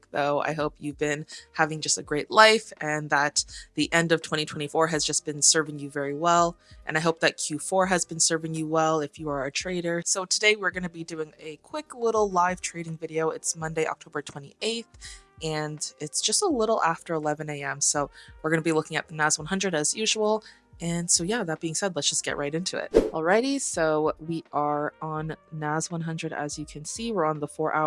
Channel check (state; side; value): identical; both; correlation 1.00